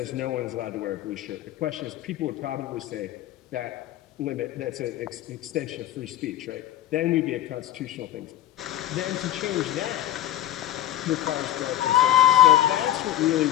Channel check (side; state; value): right; quieter; 12.9 dB